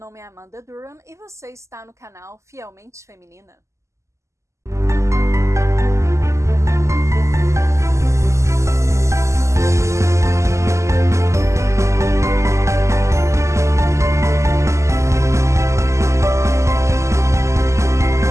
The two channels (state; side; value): late; left; 0.14 ms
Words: é Amanda Durham e você está no canal Fielmente Feminina.